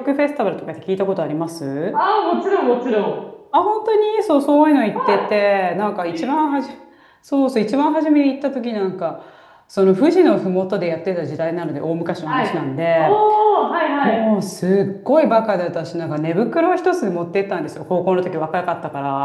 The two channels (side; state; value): both; identical; correlation 1.00